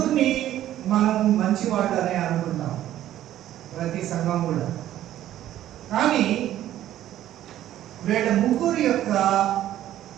మనం మంచివాళ్ళనే అనుకుంటాం ప్రతి సంఘం కూడా. కానీ వీళ్ళ ముగ్గురు యొక్క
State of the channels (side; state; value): left; quieter; 12.7 dB